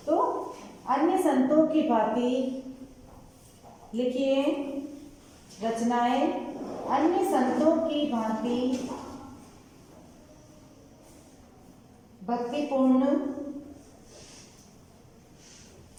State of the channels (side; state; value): both; identical; correlation 1.00